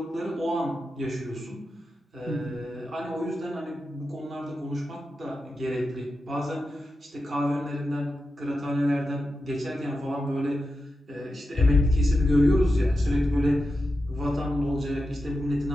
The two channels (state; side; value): normal; both; correlation 0.90